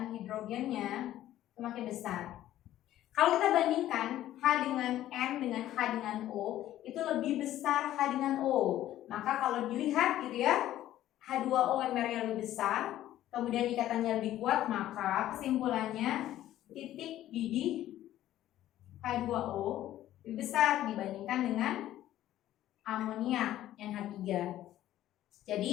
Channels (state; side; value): quieter; right; 13.3 dB